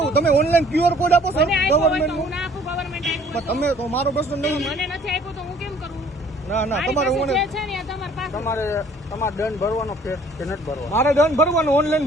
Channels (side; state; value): both; normal; correlation 0.56